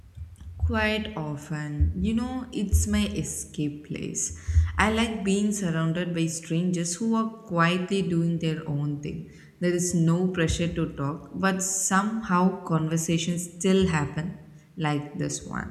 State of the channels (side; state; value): both; identical; correlation 1.00